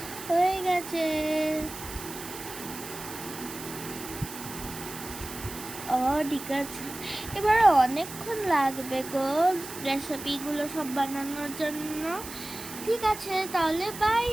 হয়ে গেছে। ঠিক আছে, এবারে অনেকক্ষণ লাগবে গো রেসিপিগুলো সব বানানোর জন্য। ঠিক আছে, তাহলে বাই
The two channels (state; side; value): noise; right; hiss, 11 dB below the sound